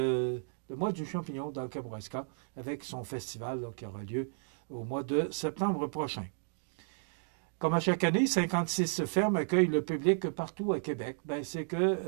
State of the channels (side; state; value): left; silent; digital silence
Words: mois du champignon dans le Kamouraska, avec son festival là, qui aura lieu au mois de septembre prochain. Comme à chaque année, 56 fermes accueillent le public partout à Québec. C'est